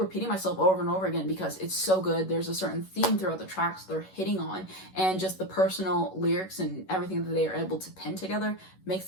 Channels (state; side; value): late; right; 11 ms